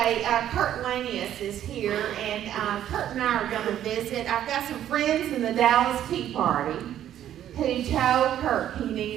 Kurt Lanius is here, and Kurt and I are going to visit. I've got some friends in the Dallas Tea Party who told Kurt he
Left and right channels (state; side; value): quieter; left; 11.2 dB